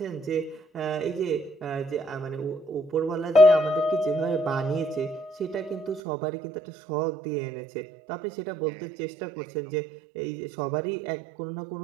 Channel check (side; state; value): left; drops out; at 6.0 s